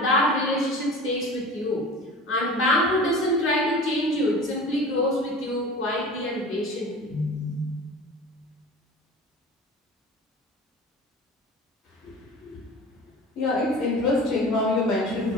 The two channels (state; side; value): normal; both; correlation 0.37